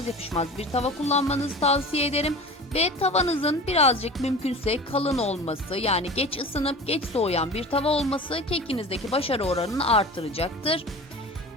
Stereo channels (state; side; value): normal; both; correlation 0.36